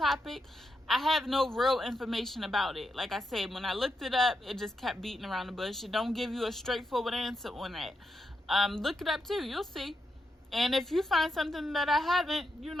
I have no real information about it. Like I said, when I looked it up, it just kept beating around the bush. It don't give you a straightforward answer on that. Look it up too. You'll see. And if you find something that I haven't,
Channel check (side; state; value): both; normal; correlation 0.84